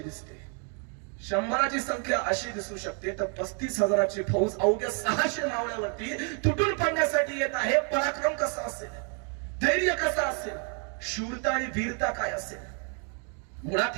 दिसते. 100ची संख्या अशी दिसू शकते, तर 35,000ची फौज अवघ्या 600 मावळ्यावरती तुटून पडण्यासाठी येत आहे. पराक्रम कसा असेल, धैर्य कसं असेल, शूरता आणि वीरता काय असेल. मुळात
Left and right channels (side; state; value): left; quieter; 39.7 dB